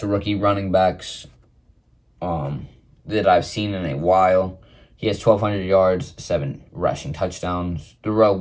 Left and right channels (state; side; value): identical; both; correlation 1.00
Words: rookie running backs that I've seen in a while. He has 1,200 yards, 7 rushing touchdowns. Darrell